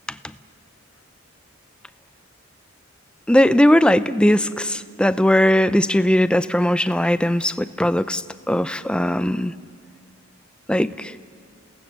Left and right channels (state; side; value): normal; both; correlation 0.92